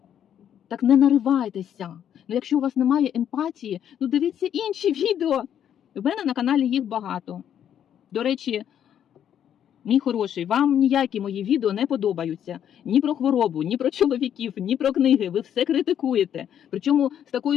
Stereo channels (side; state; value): right; quieter; 9.6 dB